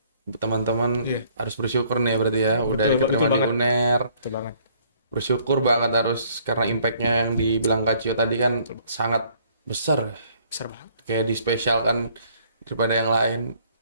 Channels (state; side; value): inverted; both; correlation -0.62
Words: Teman-teman Iya. harus bersyukur nih ya berarti ya. Udah Betul, diterima betul di banget. UNER. Betul banget. Bersyukur banget harus karena impactnya yang dibilang Kak Cio tadi kan sangat besar. Besar banget. Kayak dispesialkan daripada yang lain.